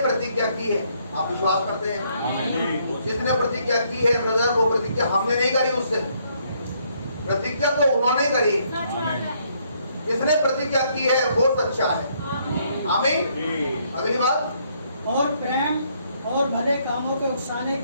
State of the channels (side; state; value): both; inverted; correlation -0.70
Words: की है, आप विश्वास करते हैं? जिसने प्रतिज्ञा की है ब्रदर, वो प्रतिज्ञा हमने नहीं करी, उससे प्रतिज्ञा तो उन्होंने करी। जिसने प्रतिज्ञा की है वो सच्चा है, आमीन। अगली बात, और प्रेम और भले कामों के उकसाने